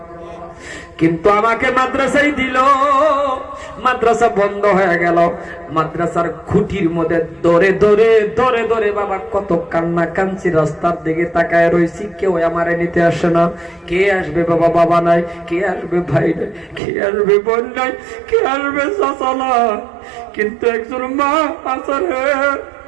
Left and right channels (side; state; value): left; drops out; at 16.8 s